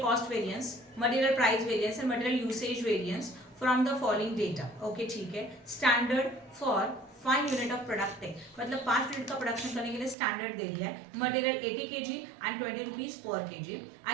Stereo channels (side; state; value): left; drops out; at 10.2 s